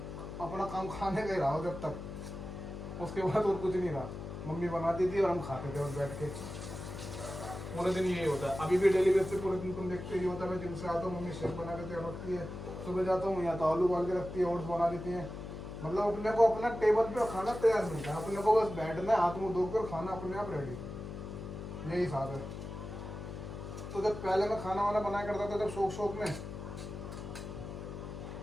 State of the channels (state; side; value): noise; left; hum, 8 dB below the sound